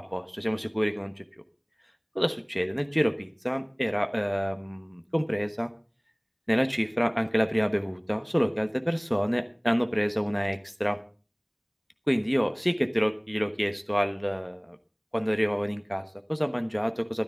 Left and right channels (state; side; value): identical; both; correlation 1.00